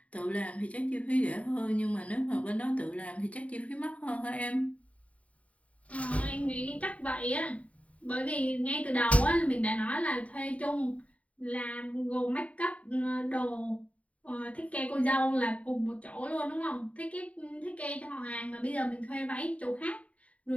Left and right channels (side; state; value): right; late; 0.067 ms